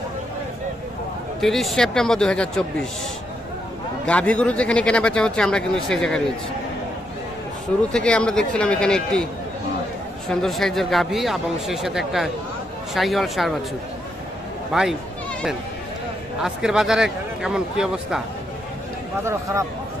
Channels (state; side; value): normal; both; correlation 0.79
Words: 30 সেপ্টেম্বর 2024। গাভী গরু যেখানে কেনা বেচা হচ্ছে, আমরা কিন্তু সেই জায়গায় রয়েছি। শুরু থেকে আমরা দেখছিলাম এখানে একটি সুন্দর সাইজের গাভী এবং সেই সাথে একটা শাহিওয়াল ষাঁড় বাছুর। ভাই, আজকের বাজারে কেমন, কি অবস্থা? বাজার খারাপ।